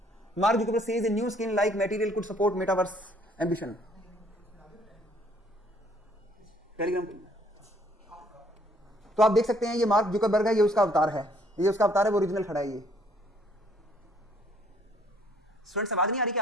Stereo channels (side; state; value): both; normal; correlation 0.62